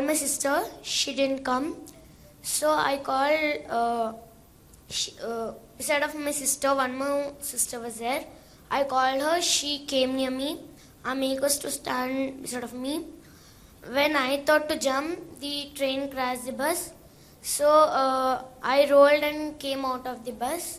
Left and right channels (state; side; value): identical; both; correlation 1.00